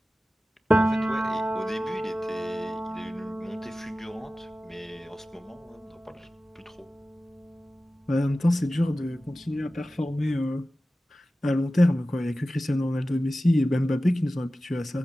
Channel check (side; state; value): both; normal; correlation 0.95